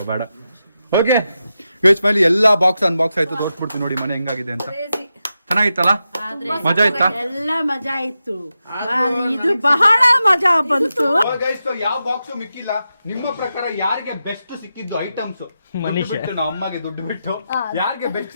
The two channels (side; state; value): both; inverted; correlation -0.89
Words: ಬೇಡ ಓಕೆ ಗೈಸ್ ಫೈನಲಿ ಎಲ್ಲಾ ಬಾಕ್ಸ್ ಅನ್ಬಾಕ್ಸ್ ಆಯ್ತು ತೋರಿಸ್ಬಿಡ್ತೀನಿ ನೋಡಿ ಮನೆ ಹೆಂಗಾಗಿದೆ ಅಂತ Crazy. ಚೆನ್ನಾಗಿತ್ತಲ್ಲ ಮಜಾ ಆಯ್ತಾ ಎಲ್ಲ ಮಜಾ ಇತ್ತು ಇದು ಬಹಳ ಮಜಾ ಬಂತು. ಗೈಸ್ ಯಾವ ಬಾಕ್ಸ್ ಮಿಕ್ಕಿಲ್ಲ ನಿಮ್ಮ ಪ್ರಕಾರ ಯಾರಿಗೆ ಬೆಸ್ಟ್ ಸಿಕ್ಕಿದ್ದು ಐಟಮ್ಸ್ ಮನೀಶ್. ಬಿಟ್ಟು ನಮ್ಮ ಅಮ್ಮಗೆ ದುಡ್ಡು ಬಿಟ್ಟು ಯಾರಿಗೆ ಬೆಸ್ಟ್